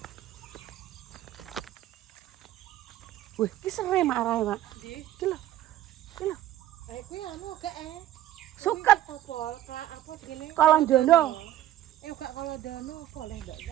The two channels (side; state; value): left; quieter; 13.0 dB